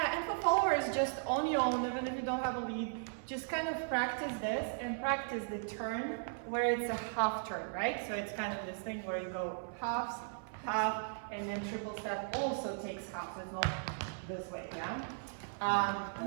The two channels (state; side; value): silent; left; 53 dB below the other